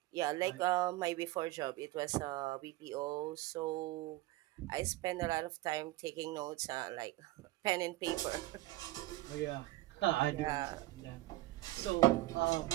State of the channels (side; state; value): left; quieter; 17.7 dB